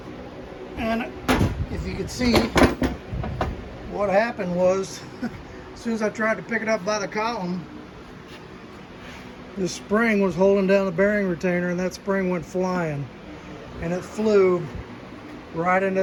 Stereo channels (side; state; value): both; identical; correlation 1.00